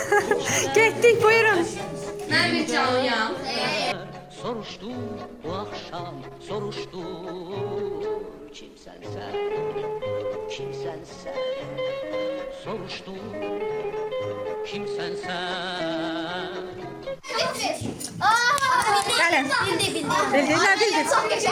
Getdik, buyurun. Ben bir canlıyam. Soruştu bu akşam, soruştu. Kimsen sen, kimsen sen? Soruştu, kimsen sen? Gəlin. Bildin, nə bildin?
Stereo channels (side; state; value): both; identical; correlation 1.00